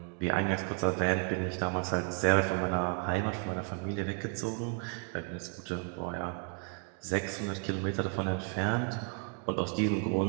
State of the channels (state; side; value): quieter; left; 34.6 dB